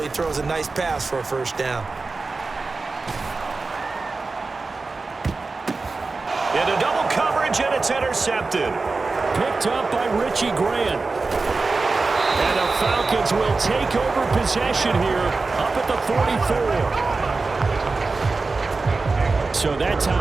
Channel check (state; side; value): quieter; left; 3.9 dB